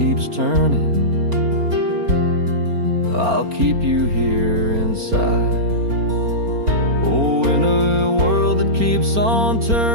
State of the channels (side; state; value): left; late; 4.3 ms